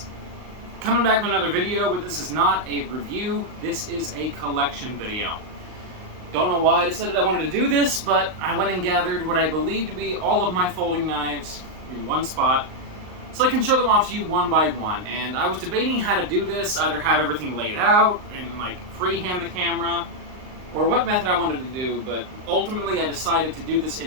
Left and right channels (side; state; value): left; late; 38 ms